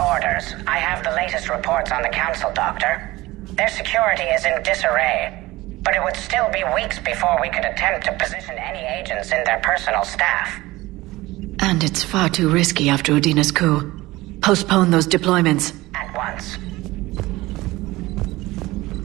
orders. I have the latest reports on the Council, Doctor. Their security is in disarray, but it would still be weeks before we could attempt to position any agents in their personal staff. And it's far too risky after Udina's coup. Postpone those deployments. At once.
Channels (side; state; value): left; quieter; 19.3 dB